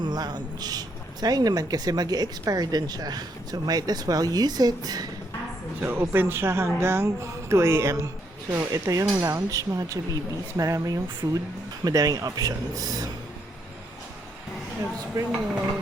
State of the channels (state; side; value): normal; both; correlation 0.74